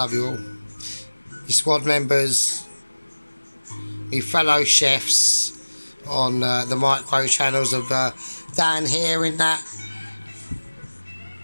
you all. Your squad members, your fellow chefs on the micro channels of Dan here in that,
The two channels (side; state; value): both; inverted; correlation -1.00